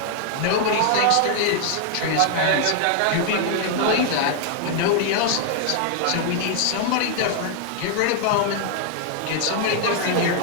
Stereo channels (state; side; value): different; both; correlation 0.00